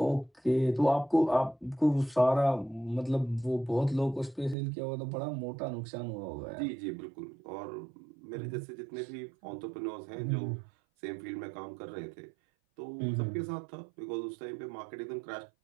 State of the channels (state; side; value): drops out; left; at 4.5 s